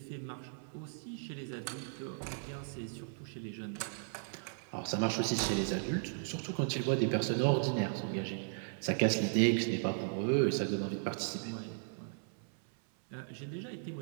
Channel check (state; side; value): silent; left; 54 dB below the other